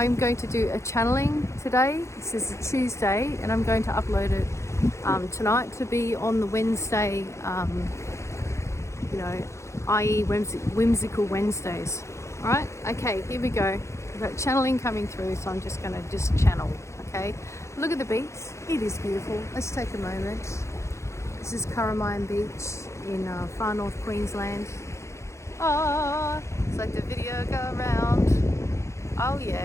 going to do a channeling today. This is a Tuesday, and I'm going to upload it tonight to be on the Wednesday, i.e. Whimsical Wednesdays. All right, okay, here we go. We've got channeling coming through, so I'm just going to channel, okay? Look at the beach. It is beautiful. Let's take a moment. This is Curramine Beach in far north Queensland. Ah, it's like the video go around. Oh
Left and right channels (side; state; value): right; late; 0.14 ms